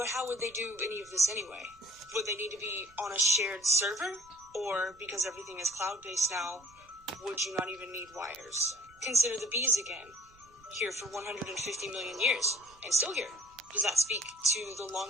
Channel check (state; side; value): noise; right; rumble, 28 dB below the sound